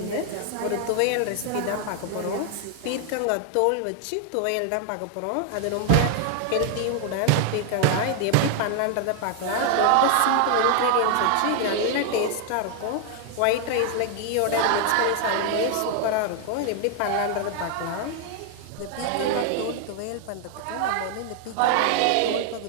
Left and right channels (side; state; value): both; different; correlation 0.00